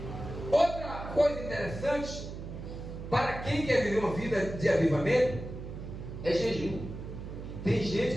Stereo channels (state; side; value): noise; right; hum, 9 dB below the sound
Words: Outra coisa interessante, para quem quer viver uma vida de avivamento, é jejum. Tem